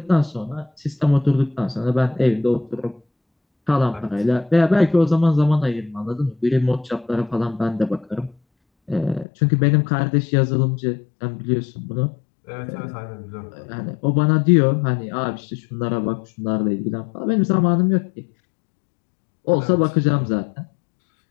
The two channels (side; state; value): right; drops out; at 9.2 s